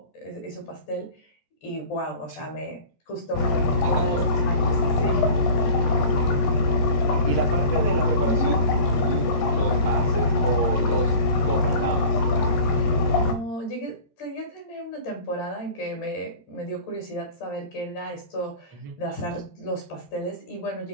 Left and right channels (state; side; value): late; right; 14 ms